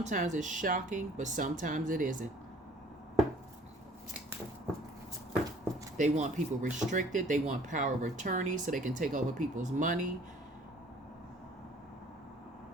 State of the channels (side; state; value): both; normal; correlation 0.54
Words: it's shocking, but sometimes it isn't. They want people restricted. They want power of attorney so they can take over people's money.